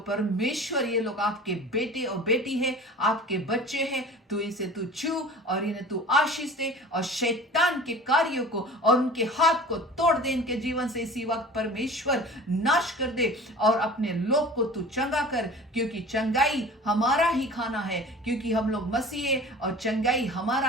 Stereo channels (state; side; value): normal; both; correlation 0.41